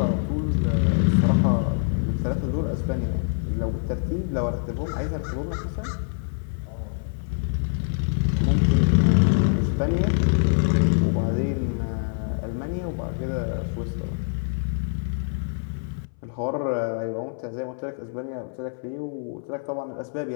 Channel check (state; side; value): silent; right; 60 dB below the other